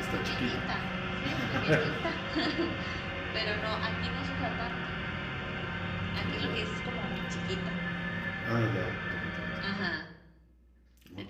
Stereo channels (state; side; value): identical; both; correlation 1.00